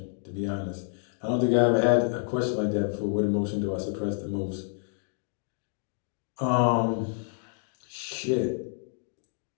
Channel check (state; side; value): silent; right; digital silence